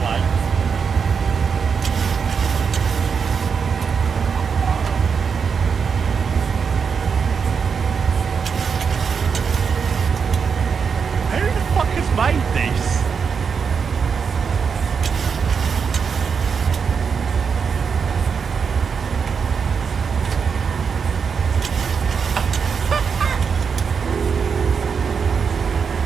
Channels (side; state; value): left; quieter; 6.1 dB